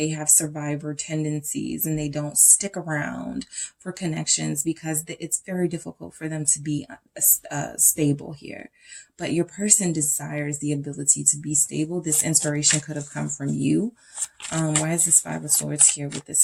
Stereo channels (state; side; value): identical; both; correlation 1.00